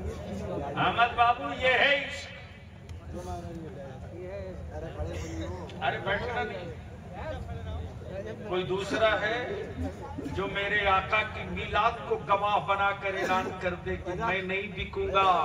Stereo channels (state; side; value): identical; both; correlation 1.00